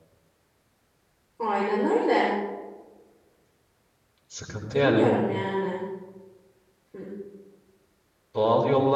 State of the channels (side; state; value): both; identical; correlation 1.00